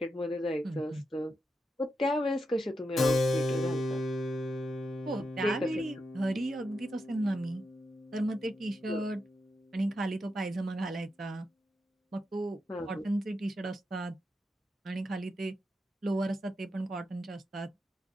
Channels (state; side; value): normal; both; correlation 0.86